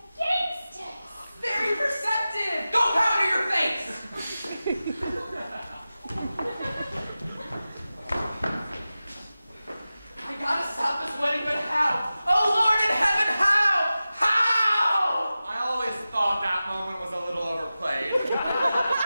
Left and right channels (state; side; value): inverted; both; correlation -0.95